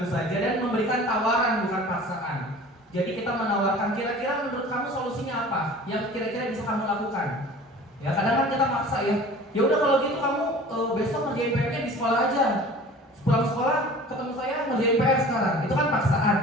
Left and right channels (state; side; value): normal; both; correlation 0.43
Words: saja dan memberikan tawaran bukan paksaan. Jadi kita menawarkan kira-kira menurut kamu solusinya apa yang kira-kira bisa kamu lakukan. Ya kadang kan kita maksa ya. Ya udah kalau gitu kamu besok ngerjain PR-nya di sekolah aja. Pulang sekolah ketemu saya ngerjain PR sekarang. Itu kan paksaan.